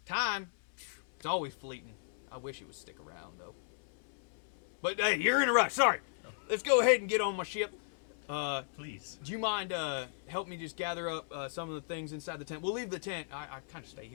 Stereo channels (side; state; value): right; silent; 54 dB below the other